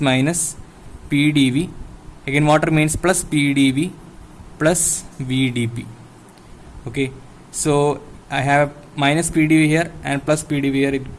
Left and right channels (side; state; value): both; identical; correlation 1.00